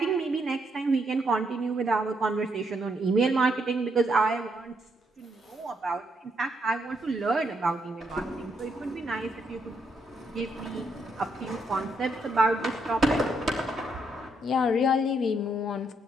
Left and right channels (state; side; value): normal; both; correlation 0.76